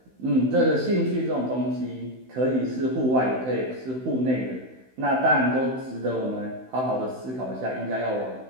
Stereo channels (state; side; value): late; left; 16 ms